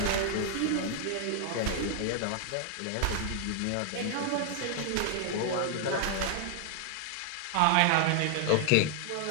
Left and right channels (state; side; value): different; both; correlation 0.00